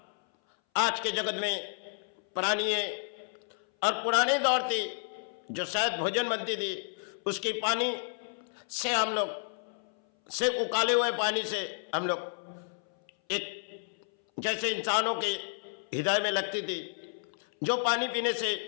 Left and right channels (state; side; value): silent; right; 57 dB below the other